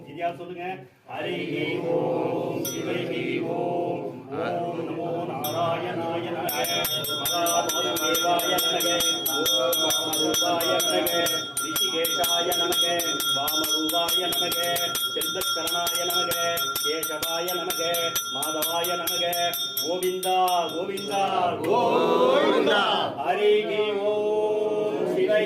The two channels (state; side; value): identical; both; correlation 1.00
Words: இதையா சொல்லுங்க. ஹரிஹி ஓம் சிவைஹி ஓம் ஓம் நமோ நாராயணாய நமக மகாமேவாய நமக ஓம் வாமரூபாய நமக ரிஷிகேஷாய நமக வாமரூபாய நமக செல்வக்கரணாய நமக கேசவாய நமக மாதவாய நமக கோவிந்தா கோவிந்தா கோவிந்தா ஹரிஹி ஓம்